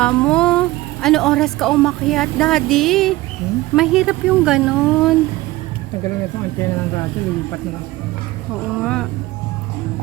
mo. Ano oras ka umakyat, Daddy? Mahirap yung ganun. Nagaling na itong antena ng radyo, lilipat na lang. Oo nga.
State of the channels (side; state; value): left; quieter; 18.5 dB